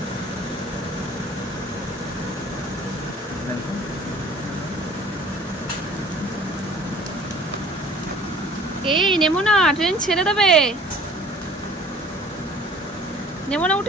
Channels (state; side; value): normal; both; correlation 0.49